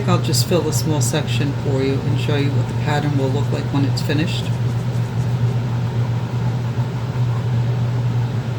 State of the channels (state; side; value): identical; both; correlation 1.00